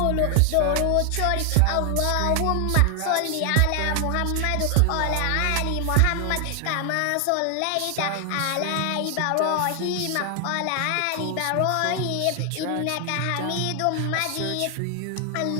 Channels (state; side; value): different; both; correlation 0.00